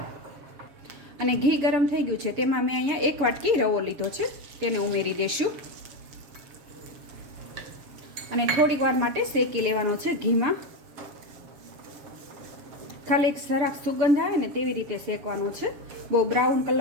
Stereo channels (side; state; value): left; late; 7.2 ms